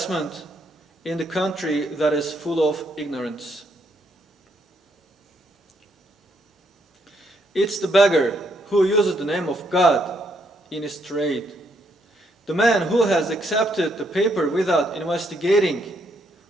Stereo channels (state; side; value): normal; both; correlation 0.74